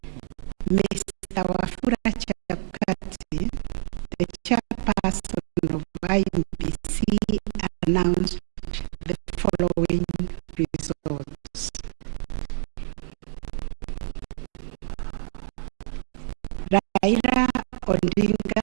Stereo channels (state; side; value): silent; left; digital silence